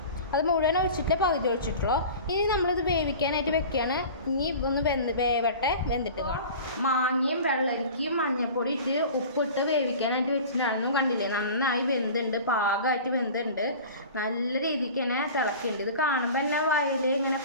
അത് മുഴുവൻ ഒഴിച്ചിട്ട് പകുതി ഒഴിച്ചിട്ടുള്ളൂ. ഇനി നമ്മളിത് വേവിക്കാനായിട്ട് വെക്കുകയാണ്. ഇനി ഒന്ന് വെന്തിട്ട് കാണാം. മാങ്ങയും വെള്ളരിക്കയും മഞ്ഞൾപ്പൊടി ഇട്ട് ഉപ്പിട്ട് വേവിക്കാനായിട്ട് വെച്ചിട്ടുണ്ടായിരുന്നു. കണ്ടില്ലേ, നന്നായി വെന്തുണ്ട്, പാകമായിട്ട് വെന്തുണ്ട്, നല്ല രീതിക്ക് തന്നെ തിളക്കുന്നുണ്ട്. ഇത് കാണുമ്പോൾ തന്നെ വായിൽ ഇങ്ങനെ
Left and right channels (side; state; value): both; inverted; correlation -0.38